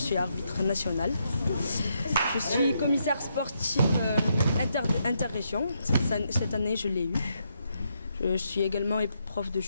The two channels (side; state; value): both; inverted; correlation -0.79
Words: arbitre national. Je suis commissaire sportif interrégion. Cette année, je l'ai eu. Je suis également prof de